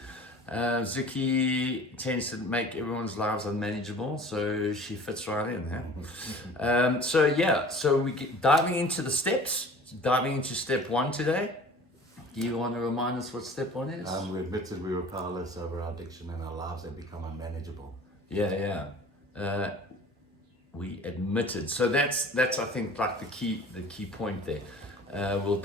Zuki tends to make everyone's lives unmanageable, so she fits right in. So we get diving into the steps, diving into step one today. Do you want to remind us what step one is? We admitted we were powerless over our addiction and our lives had become unmanageable. We admitted. So that's I think like the key point there.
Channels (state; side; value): normal; both; correlation 0.44